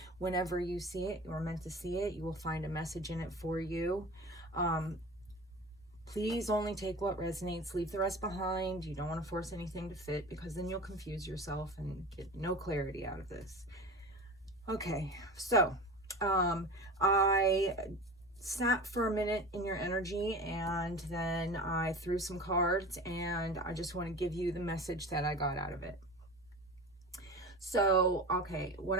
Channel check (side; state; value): both; normal; correlation 0.33